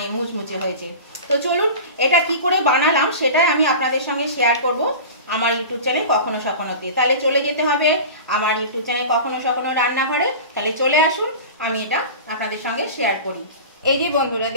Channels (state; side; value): inverted; both; correlation -0.33